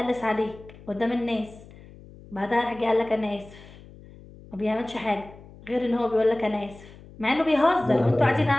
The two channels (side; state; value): left; noise; hum, 20 dB below the sound